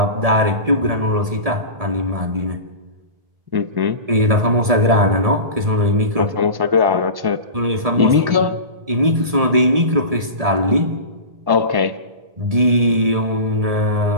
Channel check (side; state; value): left; late; 1.7 ms